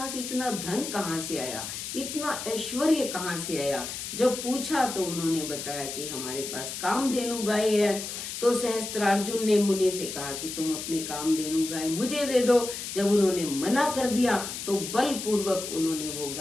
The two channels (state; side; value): noise; left; hiss, 7 dB below the sound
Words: इतना धन कहाँ से आया, इतना ऐश्वर्य कहाँ से आया। जब पूछा तो उन्होंने बताया कि हमारे पास कामधेनु गाय है। तो सहस्त्रार्जुन ने मुनि से कहा कि तुम अपनी कामधेनु गाय मुझे दे दो। जब उन्होंने मना कर दिया तो बलपूर्वक उन्होंने वो